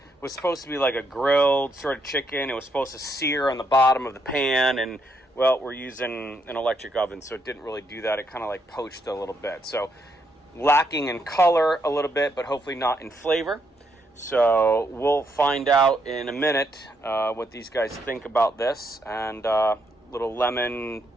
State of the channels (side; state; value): both; normal; correlation 0.76